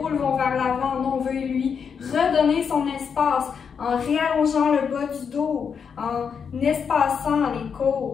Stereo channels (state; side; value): quieter; right; 6.6 dB